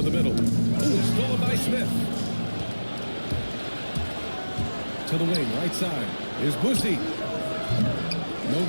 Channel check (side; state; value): both; inverted; correlation -1.00